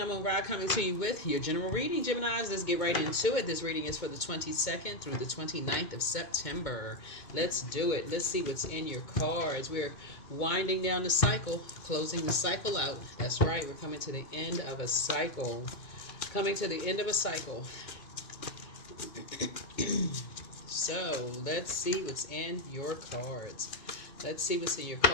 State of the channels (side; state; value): right; late; 2.2 ms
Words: Ra coming to you with your general reading. Geminis, let's get right into it. This reading is for the 22nd through the 29th of September. Let's do it. Let's see what's in your cards. We're winding down the cycle, closing the cycle out. That's right. We're coming to the end of a cycle. Coming to the end of a cycle. So let's see what's in your cards. Let's see what's in your